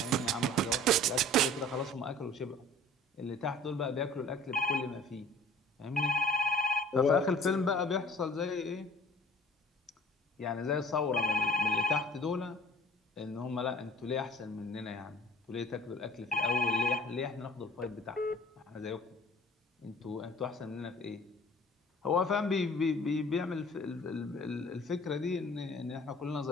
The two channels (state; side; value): normal; both; correlation 0.50